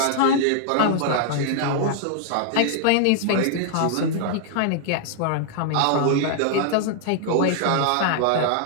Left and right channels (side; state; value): both; different; correlation -0.01